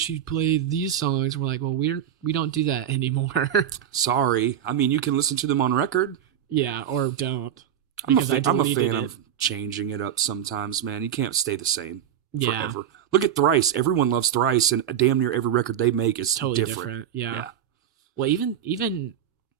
you'd play these songs. We're like, well, we don't do that anymore. Sorry. I mean, you can listen to them on record. Yeah, or don't. I'm a fan of changing it up sometimes, man. You can't stay the same forever. Look at Thrice. Everyone loves Thrice, and damn near every record they make is totally different. Yeah. Well, even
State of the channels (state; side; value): quieter; left; 9.8 dB